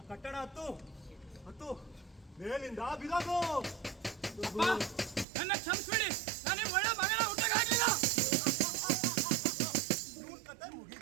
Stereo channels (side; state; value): left; drops out; at 5.2 s